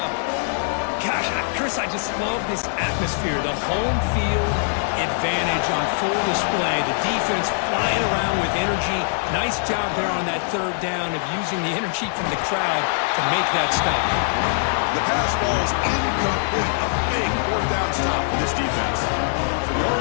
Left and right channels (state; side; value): silent; right; digital silence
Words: Gosh, Chris, I just love this atmosphere. The home field advantage on full display. The defense flying around with energy. Nice job there on that third down of using the energy from the crowd to make that stop. The pass falls incomplete. A big fourth down stop for this defense. So the